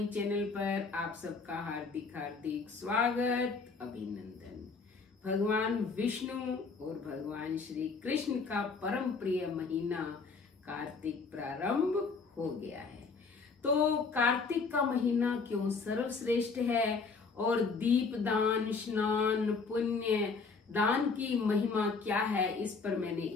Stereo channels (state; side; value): quieter; right; 4.7 dB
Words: चैनल पर आप सबका हार्दिक हार्दिक स्वागत, अभिनंदन। भगवान विष्णु और भगवान श्री कृष्ण का परम प्रिय महीना कार्तिक प्रारंभ हो गया है। तो कार्तिक का महीना क्यों सर्वश्रेष्ठ है और दीप दान, स्नान, पुण्य दान की महिमा क्या है, इस पर मैंने